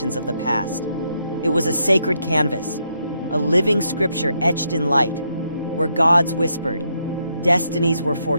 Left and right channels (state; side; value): inverted; both; correlation -0.78